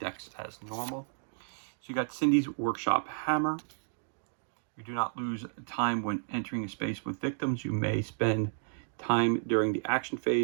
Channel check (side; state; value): left; silent; digital silence